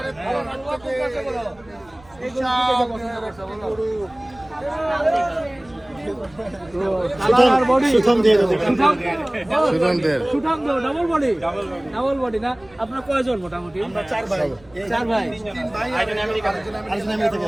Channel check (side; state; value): right; noise; rumble, 26 dB below the sound